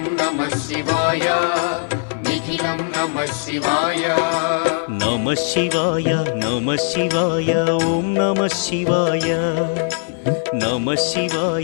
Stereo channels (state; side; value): silent; right; 60 dB below the other